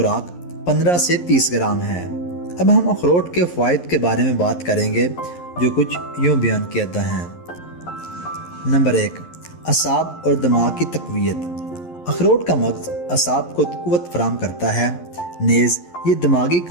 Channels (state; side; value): late; right; 11 ms